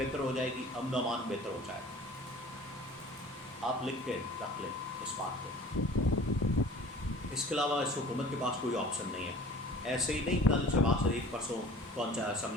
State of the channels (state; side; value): normal; both; correlation 0.45